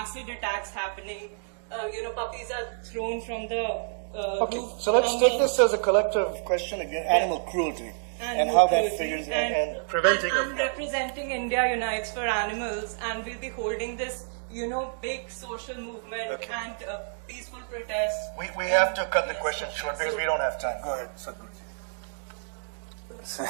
attacks happening. Puppies are thrown from the Okay, roof. so let's from take the- this as a collective question again, animal cruelty, and Animal how that cruelty. figures and preventing I'm of representing India Unites for Animals, and we'll be holding this, big social movement Okay. and peaceful protests. We have to cut the question short because we don't have time. Go ahead, Sadhguruji.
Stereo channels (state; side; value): silent; left; digital silence